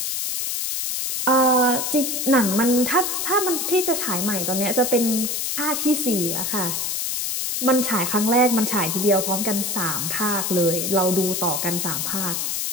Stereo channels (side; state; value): left; noise; hiss, 1 dB below the sound